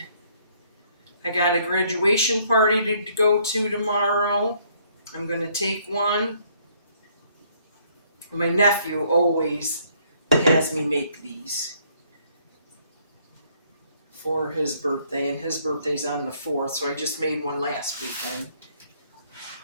I got a graduation party to go to tomorrow. I'm going to take one. My nephew always has me make these for his birthday, and his birthday's on the 4th, so I just made one last weekend.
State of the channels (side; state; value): both; inverted; correlation -0.65